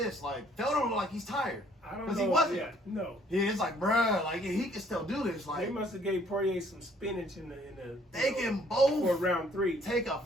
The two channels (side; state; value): both; normal; correlation 0.62